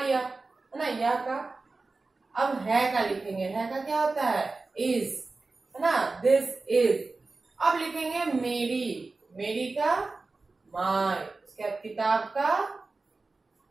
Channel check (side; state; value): left; quieter; 3.6 dB